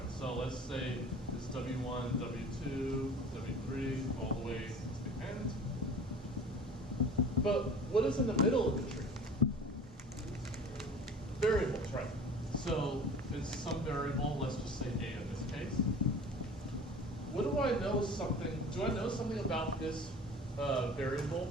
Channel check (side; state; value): both; normal; correlation 0.42